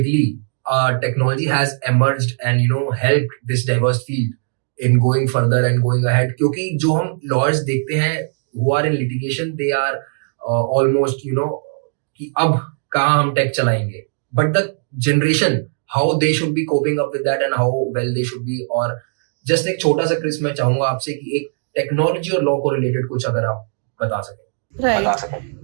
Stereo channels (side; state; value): left; silent; digital silence